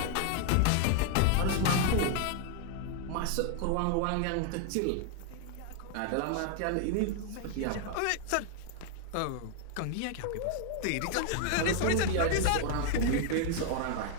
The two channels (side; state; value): both; different; correlation 0.00